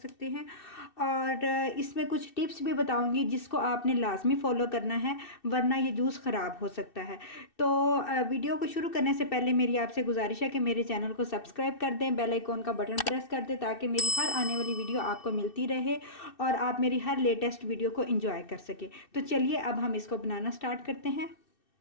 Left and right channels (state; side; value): late; right; 2.6 ms